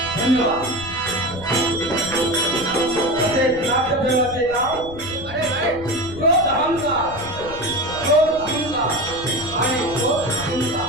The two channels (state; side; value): noise; left; rumble, 15 dB below the sound